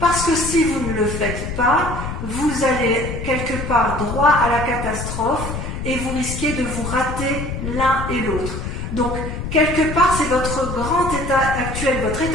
que si vous ne le faites pas, vous allez quelque part droit à la catastrophe et vous risquez de vous rater l'un et l'autre. Donc, quelque part, c'est votre grand état actuel, votre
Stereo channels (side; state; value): left; noise; rumble, 6 dB below the sound